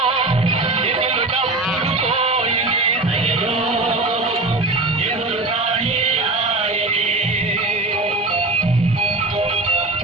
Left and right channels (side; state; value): left; quieter; 3.1 dB